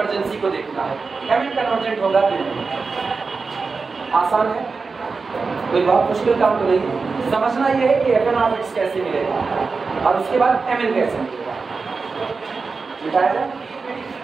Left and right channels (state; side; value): quieter; left; 4.5 dB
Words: को देखना है, mn कन्वर्जेंट होगा कि नहीं, आसान है, कोई बहुत मुश्किल काम तो नहीं। समझना ये है कि fn of x कैसे मिलेगा और उसके बाद mn कैसे मिलेगा, मिटाया जाए